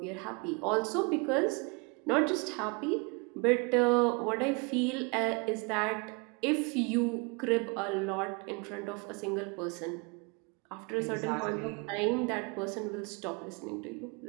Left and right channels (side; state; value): left; quieter; 31.0 dB